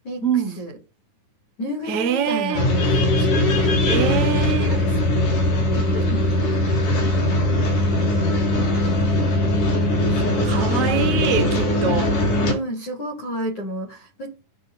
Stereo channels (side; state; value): right; late; 10 ms